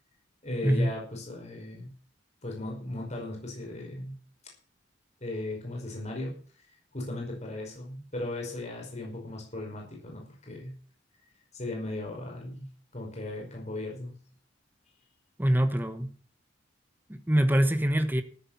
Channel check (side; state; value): both; normal; correlation 0.89